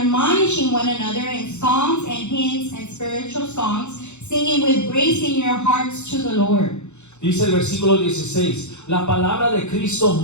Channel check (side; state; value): right; late; 0.83 ms